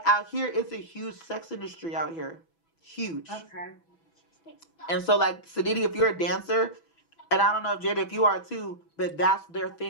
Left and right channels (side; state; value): right; late; 6.1 ms